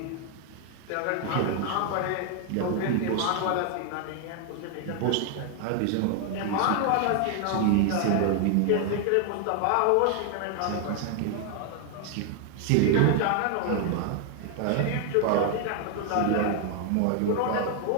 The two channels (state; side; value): different; both; correlation 0.00